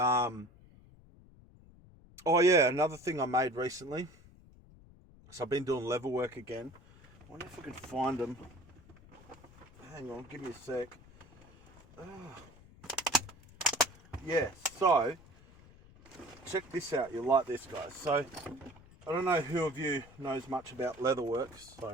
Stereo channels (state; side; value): noise; left; rumble, 23 dB below the sound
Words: oh yeah, another thing I made recently. So I've been doing level work again. I wonder if I can find them. Hang on, give me a sec. Yeah, so check this out. You'll like this, guys. So I don't know who of you knows much about leatherworks.